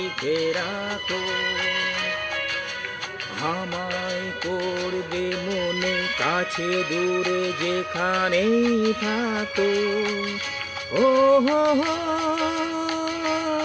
রাখো, আমায় পড়বে মনে কাছে দূরে যেখানেই থাকো। ও হো হো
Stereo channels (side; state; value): both; identical; correlation 1.00